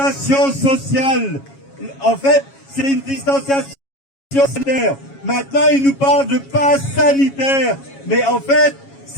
sociale. En fait, c'est une distanciation sanitaire. Maintenant, il nous parle de passe sanitaire. Mais en fait,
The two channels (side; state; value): right; late; 7.3 ms